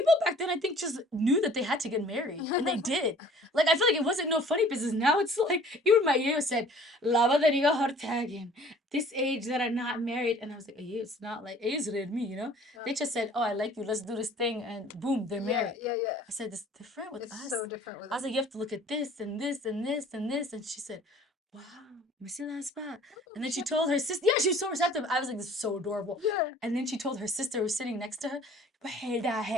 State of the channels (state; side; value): normal; both; correlation 0.51